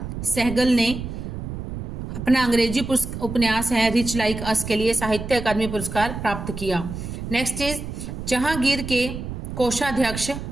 ने अपना अंग्रेजी उपन्यास है रिच लाइक अस के लिए साहित्य अकादमी पुरस्कार प्राप्त किया। नेक्स्ट इज जहांगीर के कोषाध्यक्ष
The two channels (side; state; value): right; noise; rumble, 7 dB below the sound